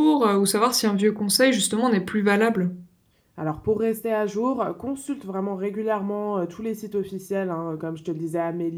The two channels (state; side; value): identical; both; correlation 1.00